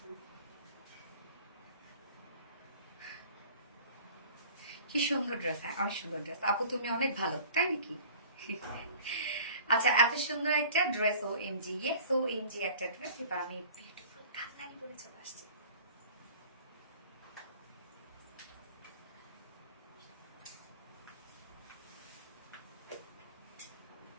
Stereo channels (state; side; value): inverted; both; correlation -0.46